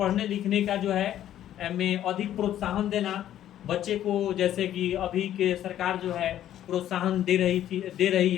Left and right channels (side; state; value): right; quieter; 11.7 dB